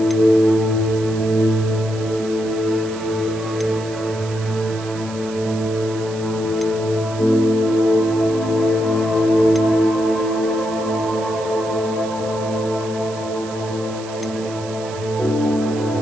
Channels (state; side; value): noise; right; hiss, 17 dB below the sound